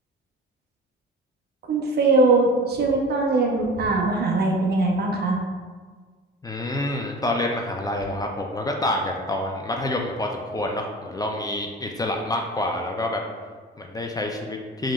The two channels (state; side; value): normal; both; correlation 0.35